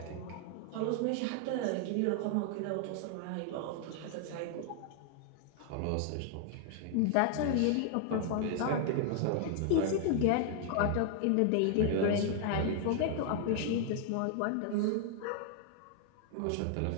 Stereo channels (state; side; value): different; both; correlation 0.00